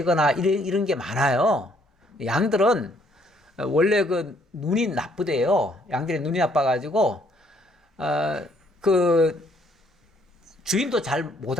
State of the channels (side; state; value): both; normal; correlation 0.66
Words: 이런 게 많아요. 양들은 원래 그 눈이 나쁘대요. 양들의 눈이 나빠가지고 그 주인도 잘 못